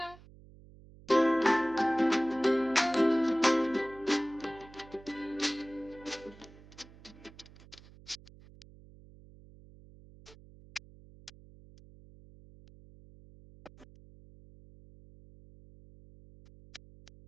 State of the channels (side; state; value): right; noise; hum, 22 dB below the sound